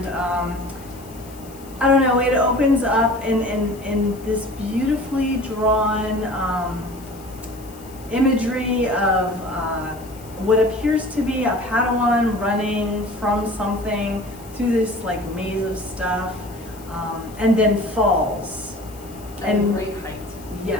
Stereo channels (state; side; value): noise; left; hiss, 22 dB below the sound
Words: I don't know, it opens up in this beautifully drawn imagery of what appears to be a Padawan running from something through this like maze of stuff, and then falls. At a great height.